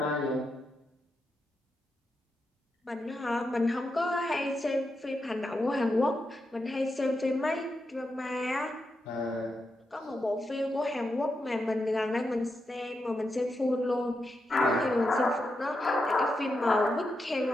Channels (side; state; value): both; normal; correlation 0.86